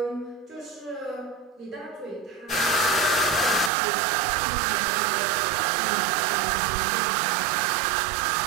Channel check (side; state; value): left; drops out; at 3.7 s